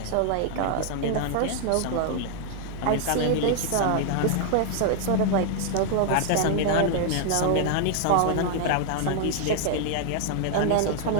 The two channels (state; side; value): different; both; correlation 0.00